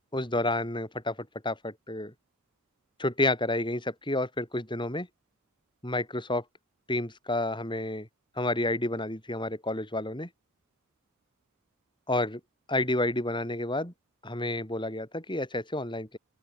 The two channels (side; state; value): both; normal; correlation 0.37